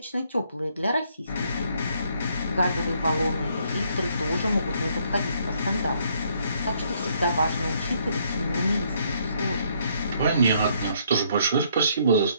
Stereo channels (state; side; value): inverted; both; correlation -0.69